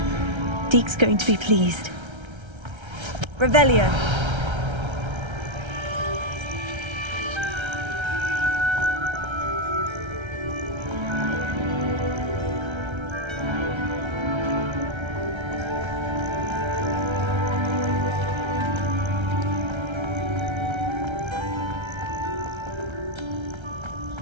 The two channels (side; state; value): left; late; 1.3 ms